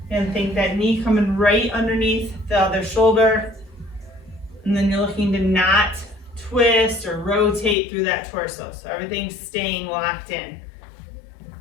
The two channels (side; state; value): right; drops out; at 7.8 s